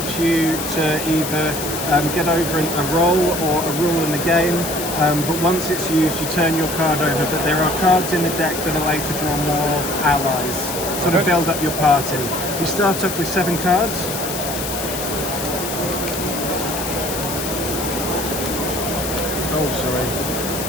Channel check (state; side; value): noise; left; hiss, 6 dB below the sound